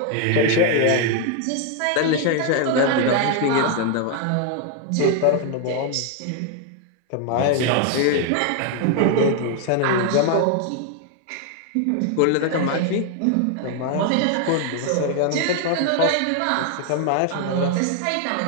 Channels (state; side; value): different; both; correlation 0.00